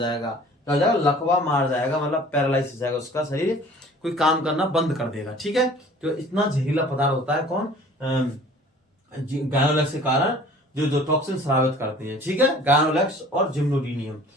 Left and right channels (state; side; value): normal; both; correlation 0.49